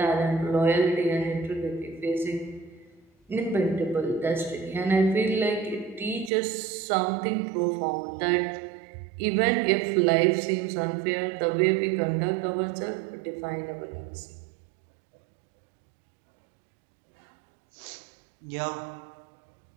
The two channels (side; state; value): left; drops out; at 6.3 s